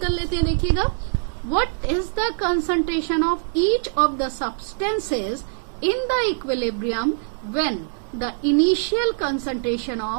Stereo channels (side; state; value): left; silent; digital silence